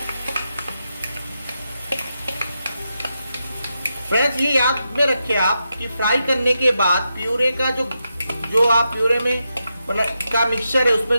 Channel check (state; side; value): inverted; both; correlation -0.86